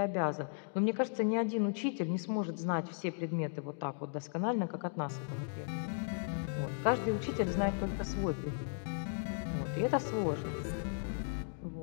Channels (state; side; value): silent; right; digital silence